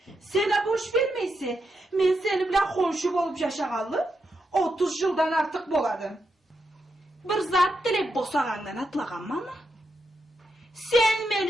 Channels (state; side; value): normal; both; correlation 0.84